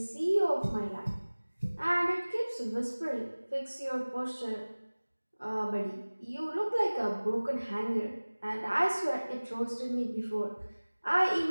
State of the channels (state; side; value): inverted; both; correlation -1.00